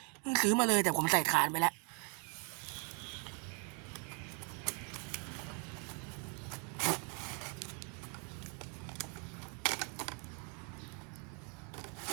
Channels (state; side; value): quieter; left; 37.1 dB